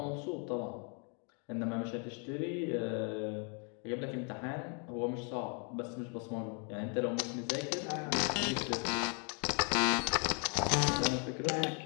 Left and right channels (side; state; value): right; quieter; 38.3 dB